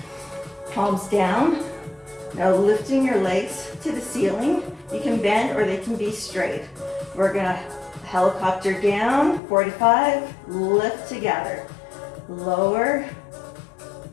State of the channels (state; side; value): drops out; right; at 9.4 s